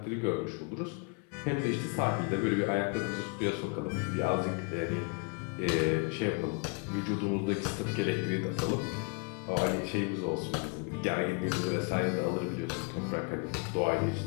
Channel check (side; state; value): right; quieter; 33.9 dB